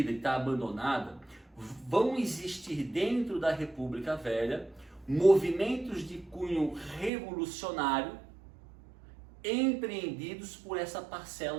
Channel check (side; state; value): left; drops out; at 7.1 s